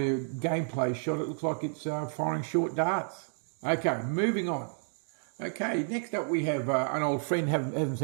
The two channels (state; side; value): silent; left; 57 dB below the other